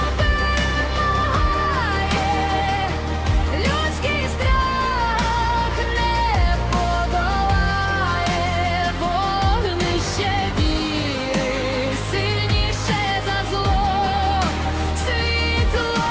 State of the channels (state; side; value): identical; both; correlation 1.00